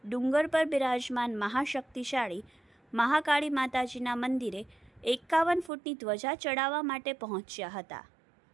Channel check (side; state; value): left; drops out; at 5.7 s